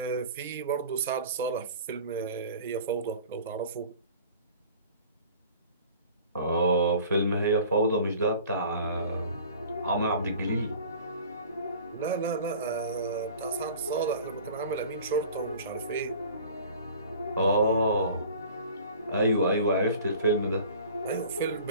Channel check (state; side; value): inverted; both; correlation -0.44